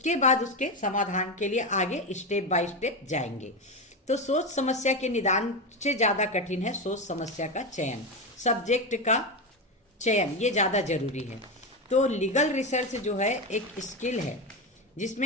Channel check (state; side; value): normal; both; correlation 0.15